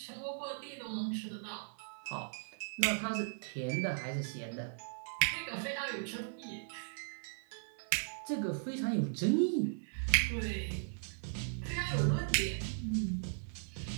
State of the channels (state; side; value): silent; left; digital silence